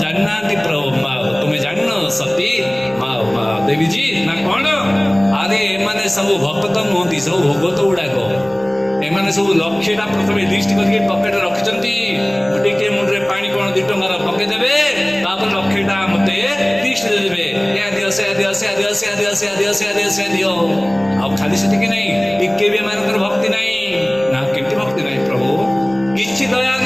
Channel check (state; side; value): noise; left; rumble, 28 dB below the sound